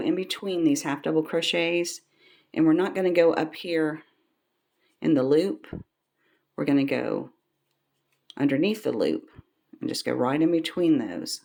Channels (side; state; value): both; identical; correlation 1.00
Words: between these half double crochets, and we're not going to go up here in the loop. We're going to go underneath the loop and just go right in between those.